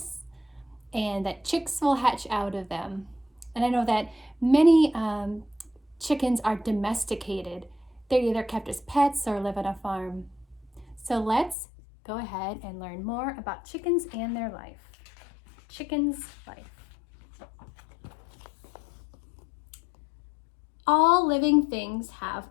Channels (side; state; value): right; drops out; at 11.6 s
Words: and that chicks will hatch out of them. And I know that many chickens are domesticated. They're either kept as pets or live on a farm. So let's go ahead and learn more about chickens and their life. Chicken's life. All living things have